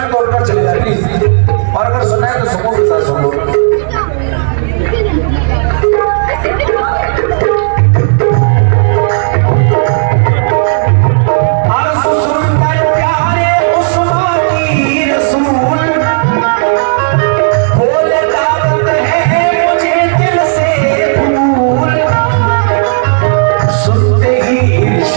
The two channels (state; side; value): silent; left; digital silence